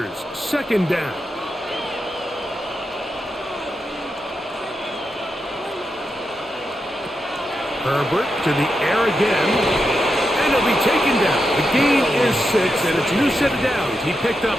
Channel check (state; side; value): normal; both; correlation 0.86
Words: second down. Herbert to the air again. And he'll be taken down. The gain is 6, and it's a new set of downs. He picked up